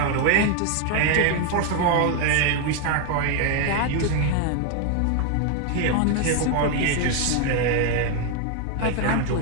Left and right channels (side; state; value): both; different; correlation 0.01